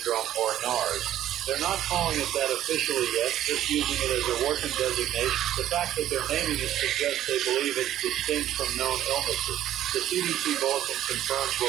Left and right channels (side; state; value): left; quieter; 12.2 dB